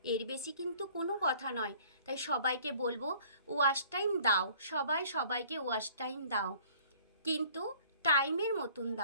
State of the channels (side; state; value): both; inverted; correlation -0.53